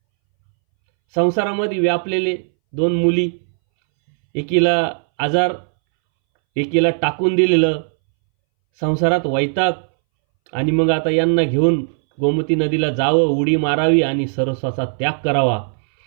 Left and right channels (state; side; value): silent; left; 65 dB below the other